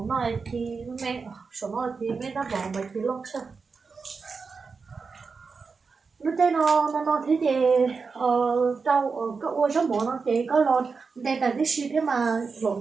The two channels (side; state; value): left; quieter; 4.9 dB